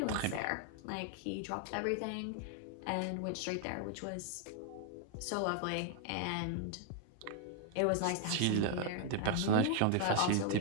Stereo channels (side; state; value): both; different; correlation 0.00